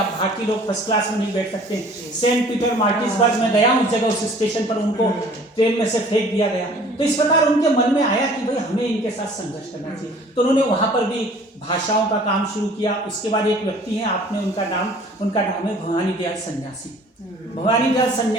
भारतीय लोग फर्स्ट क्लास में नहीं बैठ सकते। सेंट पीटर मार्टिसबर्ग में गया उस जगह, उस स्टेशन पर उनको ट्रेन में से फेंक दिया गया। तो इस प्रकार उनके मन में आया कि भाई हमें इनके साथ संघर्ष करना चाहिए। तो उन्होंने वहां पर भी भाषाओं का काम शुरू किया। उसके बाद एक व्यक्ति है, आपने उनका नाम है भवानी दयाल सन्यासी। भवानी दयाल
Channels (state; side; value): normal; both; correlation 0.51